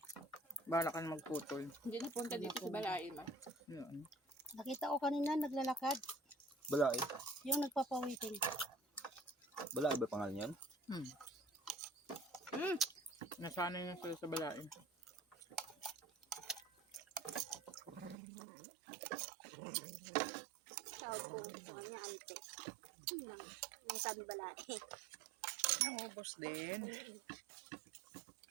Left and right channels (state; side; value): drops out; left; at 18.2 s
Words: Bala ka na magputol. Hindi na punta dito sa balay ma. Yun. Nakita ko kanina naglalakad. Balay. Yung nagpapawiting. Bala, ba pangalan yan? Hmm. Nasanay na sila sa balain. Tawag ko sa kanya, ante. Nang sabi balay. Naubos din.